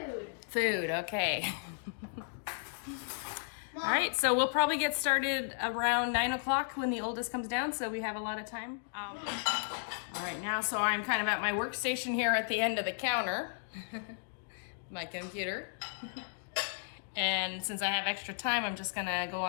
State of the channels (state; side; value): silent; right; digital silence